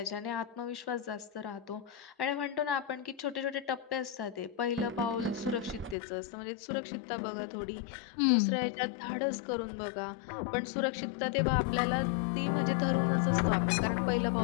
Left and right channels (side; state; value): right; drops out; at 6.0 s